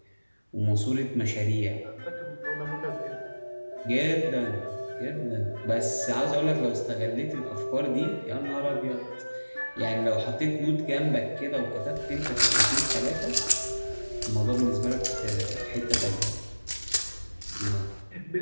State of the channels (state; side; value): inverted; both; correlation -1.00